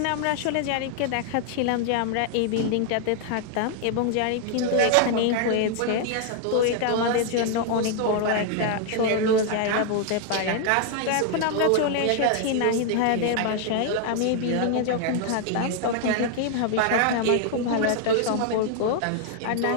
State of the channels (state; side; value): different; both; correlation 0.00